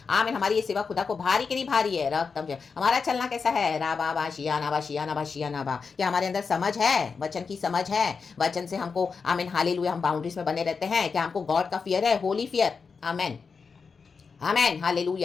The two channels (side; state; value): right; quieter; 5.2 dB